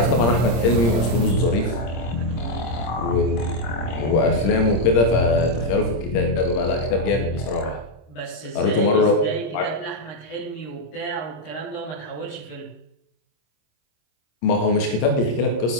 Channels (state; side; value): late; right; 26 ms